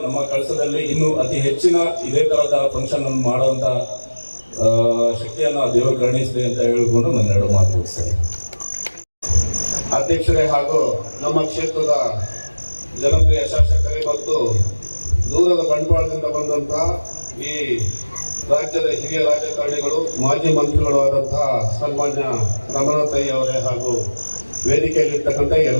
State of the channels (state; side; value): inverted; both; correlation -1.00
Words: ನಮ್ಮ ಕಳಸದಲ್ಲಿ ಇನ್ನೂ ಅತಿ ಹೆಚ್ಚಿನ ಇದೇ ತರದ ಫಂಕ್ಷನ್ ಅನ್ನು ಮಾಡುವಂತ ಶಕ್ತಿಯನ್ನು ದೇವರು ಕರುಣಿಸಲಿ ಅಂತ ಹೇಳಿಕೊಂಡು ನನ್ನ 2 ಮಾತು ಮುಗಿಸ್ತೇನೆ. ಅಧ್ಯಕ್ಷರೇ ಹಾಗೂ ನಮ್ಮ ಕ್ಷೇತ್ರದ ಜನಪ್ರಿಯ ಶಾಸಕರೇ ಮತ್ತು ದೂರದ ಬಂಟ್ವಾಳದಿಂದ ಬಂದಂತಹ ಈ ರಾಜ್ಯದ ಹಿರಿಯ ರಾಜಕಾರಣಿಗಳು, ಮಾಜಿ ಮಂತ್ರಿಗಳು ಆದಂತಹ ಸನ್ಮಾನ್ಯ ರಮನಾಥ್ ಅವರೇ ಹಾಗೂ ವೇದಿಕೆಯಲ್ಲಿರ್ತಕ್ಕಂಥ